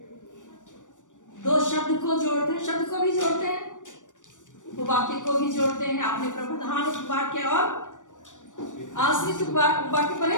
दो शब्द को जोड़ते हैं, शब्द को भी जोड़ते हैं, उपवाक्य को भी जोड़ते हैं। आपने प्रधान उपवाक्य और आश्रित उपवाक्य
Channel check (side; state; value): right; late; 0.87 ms